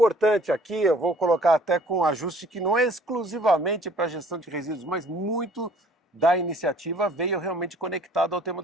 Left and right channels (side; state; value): both; normal; correlation 0.55